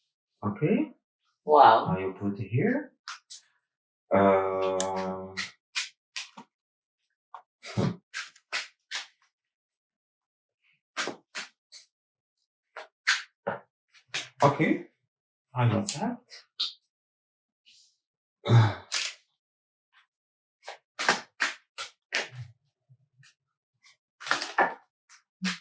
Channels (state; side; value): identical; both; correlation 1.00